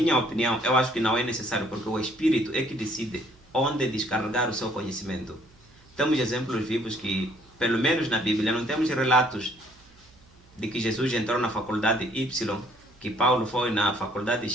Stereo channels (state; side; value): noise; right; hum, 28 dB below the sound